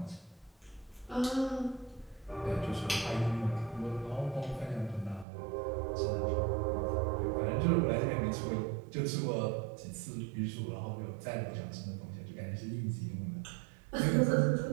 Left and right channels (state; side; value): drops out; left; at 5.2 s